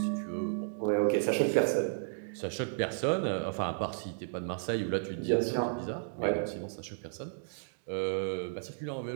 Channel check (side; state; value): left; silent; digital silence